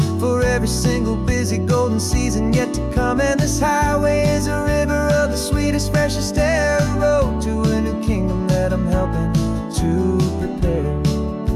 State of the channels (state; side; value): identical; both; correlation 1.00